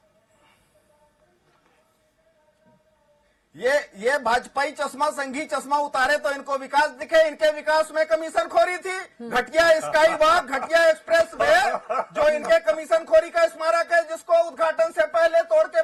ये भाजपाई चश्मा, संघी चश्मा उतारे तो इनको विकास दिखे। इनके विकास में कमीशन खोरी थी, घटिया स्काई वॉक, घटिया एक्सप्रेस वे, जो इनके कमीशन खोरी का स्मारक है, जिसको उद्घाटन से पहले तोड़ के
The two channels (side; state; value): both; identical; correlation 1.00